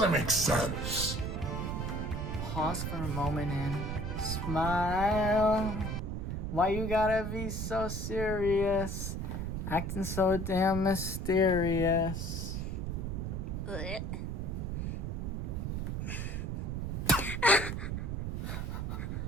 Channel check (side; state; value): right; noise; rumble, 2 dB below the sound